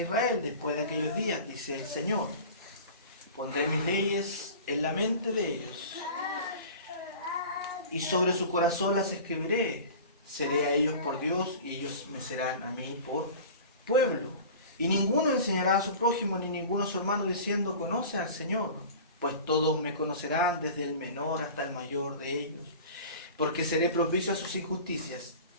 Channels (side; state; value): both; inverted; correlation -0.38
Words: después de aquellos días, dice el Señor. Pondré mis leyes en la mente de ellos, y sobre su corazón las escribiré. Seré a ellos por Dios, y ellos me serán a mí por pueblo. Y ninguno enseñará a su prójimo, ni ninguno a su hermano, diciendo: conoce al Señor, pues todos me conocerán, desde el menor hasta el mayor de ellos. Porque seré propicio a sus injusticias,